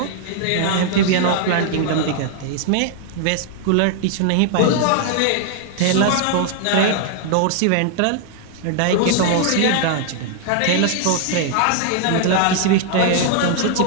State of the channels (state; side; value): different; both; correlation 0.00